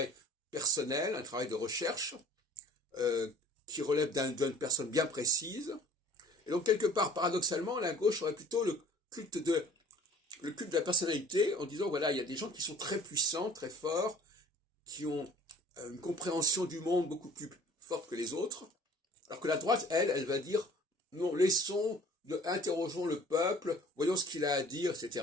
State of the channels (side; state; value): both; normal; correlation 0.50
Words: personnel, un travail de recherche, qui relève d'une personne bien précise. Et donc quelque part, paradoxalement, la gauche aurait plutôt le culte de la personnalité, en disant voilà, il y a des gens qui sont très puissants, très forts, qui ont une compréhension du monde beaucoup plus forte que les autres, alors que la droite, elle va dire non, interrogeons le peuple, voyons ce qu'il a à dire,